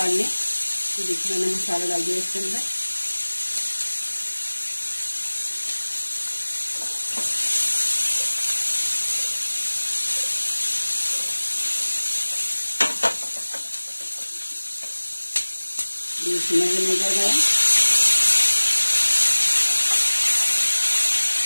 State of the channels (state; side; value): inverted; both; correlation -1.00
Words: लें। देखिए मैंने मसाला डाल दिया इसके अंदर। इसमें निकल गया।